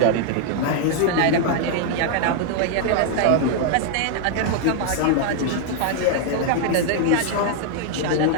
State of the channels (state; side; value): different; both; correlation 0.00